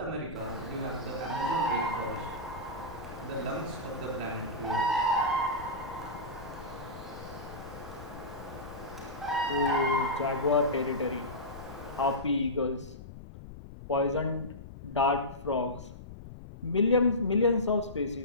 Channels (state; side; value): noise; left; rumble, 14 dB below the sound